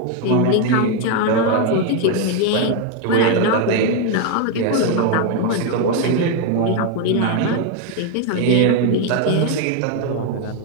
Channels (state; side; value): different; both; correlation 0.01